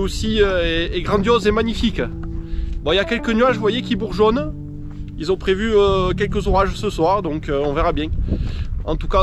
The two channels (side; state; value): both; identical; correlation 1.00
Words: est grandiose et magnifique. Bon, il y a quelques nuages, vous voyez, qui bourgeonnent. Ils ont prévu quelques orages ce soir, donc on verra bien. En tout